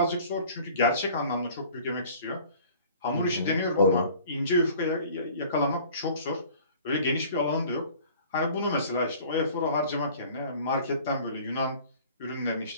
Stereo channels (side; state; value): both; inverted; correlation -0.49